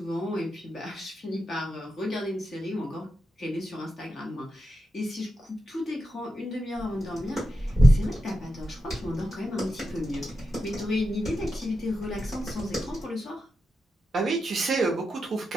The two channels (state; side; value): normal; both; correlation 0.88